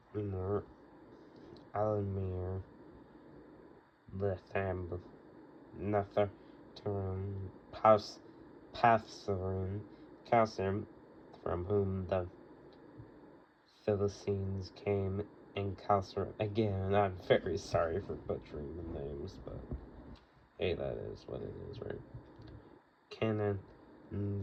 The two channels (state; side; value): identical; both; correlation 1.00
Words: Lemur, Alamir, Lethab, Nethertarim, Pathsarim, Kassim, from whom the Philistines came, and Kasser. Again, I'm very sorry for butchering the names, but hey, that is what it is, right? Canaan